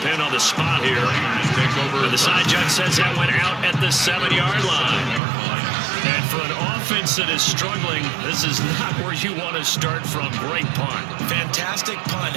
on the spot here. And the side judge says that went out at the 7-yard line. And for an offense that is struggling, this is not where you want to start from. Great punt. Fantastic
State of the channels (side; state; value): left; drops out; at 5.2 s